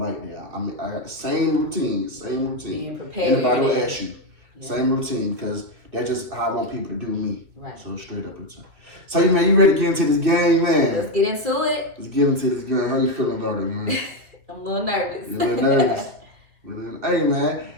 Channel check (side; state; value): left; late; 2.3 ms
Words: that. I mean, I got the same routine. Being prepared. Anybody will ask you. Same routine, because that's just how I want people to do me. Right. So straight up routine. So, you ready to get into this game, man? Let's get into it. Let's get into this game. How you feeling about it, man? I'm a little nervous. You're a little nervous. Hey, man.